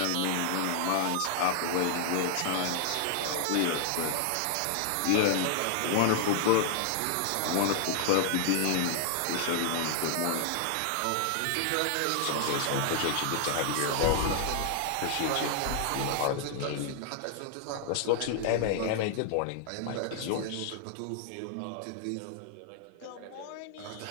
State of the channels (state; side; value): different; both; correlation 0.00